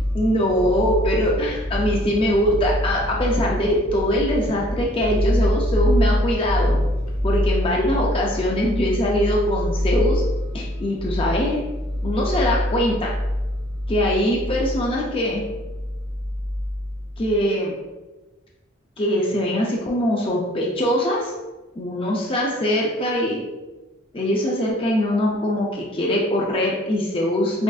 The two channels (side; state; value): both; normal; correlation 0.57